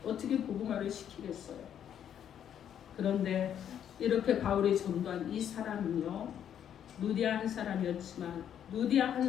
어떻게 복음화를 시키겠어요? 그런데 이렇게 바울이 전도한 이 사람은요, 누디아 한 사람이었지만 누디아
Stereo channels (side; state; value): right; quieter; 9.5 dB